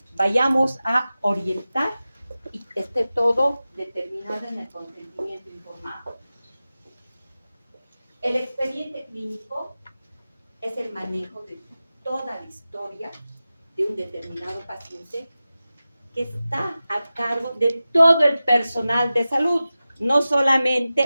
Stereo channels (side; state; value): both; inverted; correlation -0.95